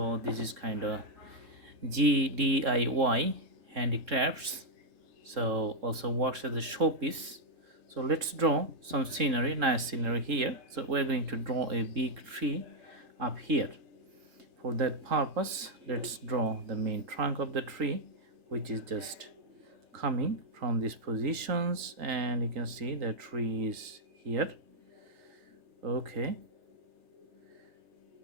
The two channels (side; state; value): left; late; 3.7 ms